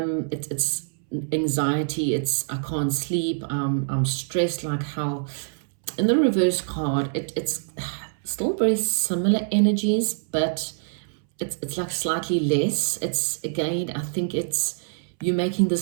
It's anxiety, it's I can't sleep, I'm stressed like hell. In the reverse card, it's still very similar energies, but it's like slightly less. It's, again, I think it's you making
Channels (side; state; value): left; silent; 62 dB below the other